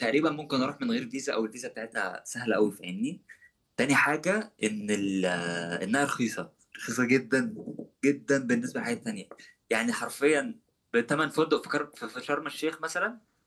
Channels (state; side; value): identical; both; correlation 1.00